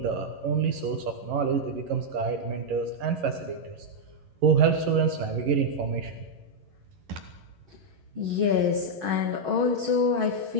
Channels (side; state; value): left; late; 11 ms